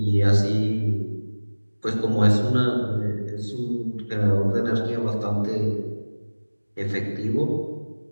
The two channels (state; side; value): inverted; both; correlation -1.00